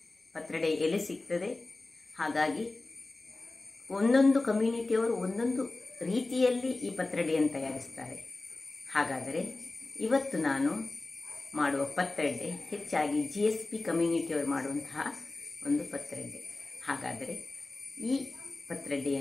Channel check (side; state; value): right; quieter; 3.2 dB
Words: ಪತ್ರೊಡೆ ಎಲೆ ಸಿಗ್ತದೆ. ಹಾಗಾಗಿ ಒಂದೊಂದು ಕಮ್ಯುನಿಟಿಯವರು ಒಂದೊಂದು ರೀತಿಯಲ್ಲಿ ಈ ಪತ್ರೊಡೆಯನ್ನು ತಯಾರಿಸ್ತಾರೆ. ಹಾಗಾದರೆ ಇವತ್ತು ನಾನು ಮಾಡುವ ಪತ್ರೊಡೆ ಹೆಚ್ಚಾಗಿ GSP ಕಮ್ಯುನಿಟಿಯವರು ಮಾಡುವಂತಹ ಒಂದು ಪತ್ರೊಡೆ. ಹಾಗಾದರೆ ಈ